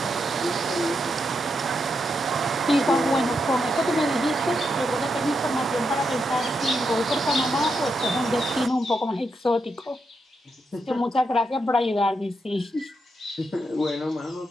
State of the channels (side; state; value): both; normal; correlation 0.83